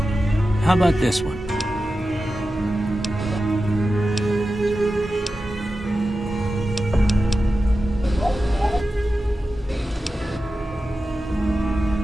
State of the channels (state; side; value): normal; both; correlation 0.92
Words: How about this one?